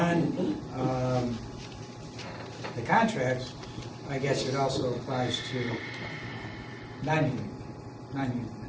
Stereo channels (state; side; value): identical; both; correlation 1.00